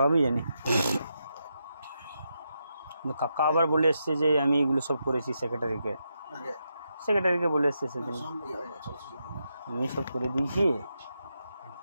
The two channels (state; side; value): inverted; both; correlation -0.84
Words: জানি। কাকা আবার বলে এসছে যে আমি এগুলো সব করেছি সেক্রেটারিকে বলে এসছে সেদিন, আমি সব করে দিয়েছি,